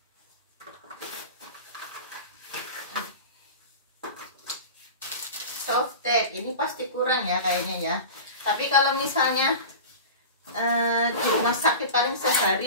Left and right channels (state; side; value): inverted; both; correlation -0.32